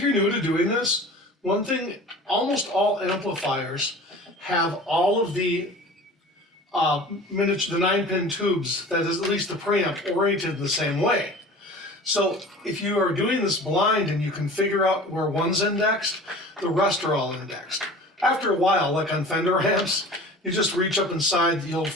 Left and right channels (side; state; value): both; normal; correlation 0.41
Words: you're new to doing this, one thing, almost all amplifiers have all of the the 9-pin tubes, that is at least the preamp, oriented the same way. So if you are doing this blind and you can figure out where one's indexed, the rest are all indexed. After a while, like on Fender amps, you just reach up inside, you